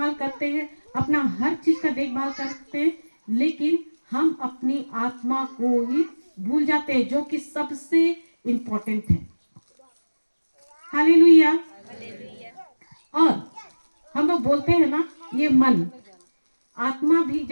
करते हैं, अपना हर चीज का देखभाल करते हैं, लेकिन हम अपनी आत्मा को ही भूल जाते हैं, जो कि सबसे इम्पोर्टेंट है। हालेलुया। हालेलुया। और हम लोग बोलते हैं ना, ये मन, आत्मा भी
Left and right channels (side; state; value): both; inverted; correlation -1.00